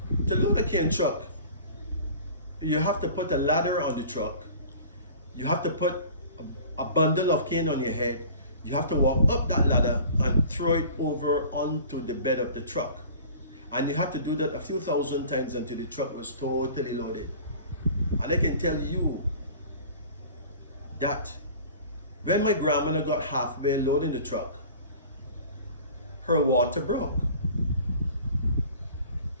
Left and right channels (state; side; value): inverted; both; correlation -0.44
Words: to load a cane truck, you have to put a ladder on the truck. You have to put a bundle of cane on your head. You have to walk up that ladder and throw it over onto the bed of the truck. And you have to do that a few thousand times until the truck was totally loaded. And I can tell you that when my grandmother got halfway loading the truck, her water broke.